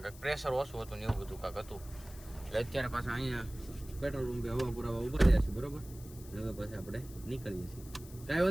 કાંક પ્રેશર ઓછું હતું ને એવું બધું કાંક હતું. એટલે અત્યારે પાછા અહીંયા પેટ્રોલ પંપે હવા પુરાવા ઉભા રહ્યા છે બરોબર. હવે પછી આપણે નીકળીએ છીએ. કાંઈ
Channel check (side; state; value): left; noise; hiss, 19 dB below the sound